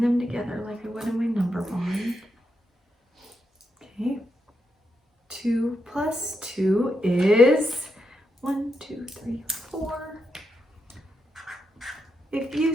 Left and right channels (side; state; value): both; normal; correlation 0.83